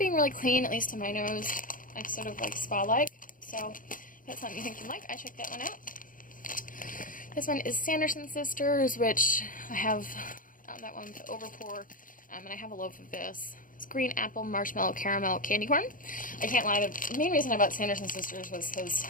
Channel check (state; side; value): late; right; 0.39 ms